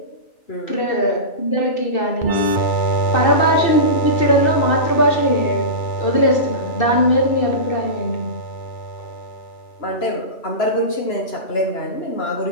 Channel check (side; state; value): right; late; 2.6 ms